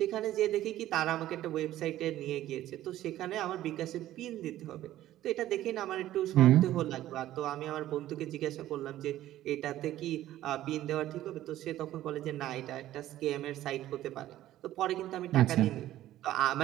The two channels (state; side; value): quieter; left; 13.8 dB